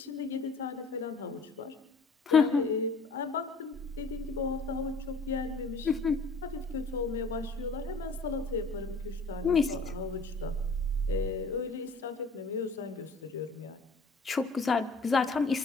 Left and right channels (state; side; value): quieter; right; 3.6 dB